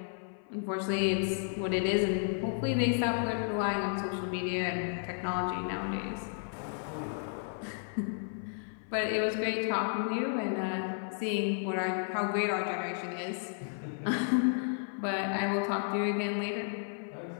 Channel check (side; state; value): right; silent; 56 dB below the other